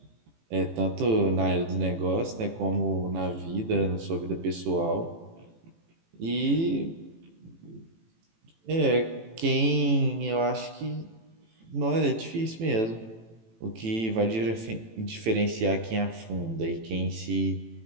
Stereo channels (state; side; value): late; left; 18 ms